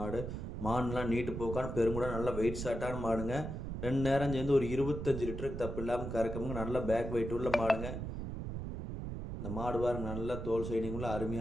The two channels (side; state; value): right; noise; rumble, 5 dB below the sound